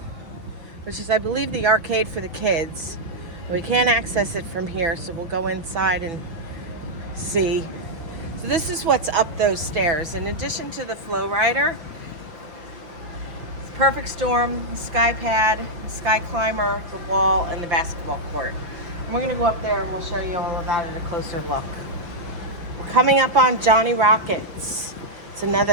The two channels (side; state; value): left; late; 5.9 ms